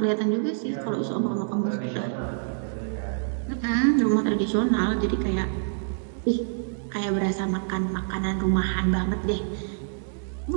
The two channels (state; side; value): silent; left; 61 dB below the other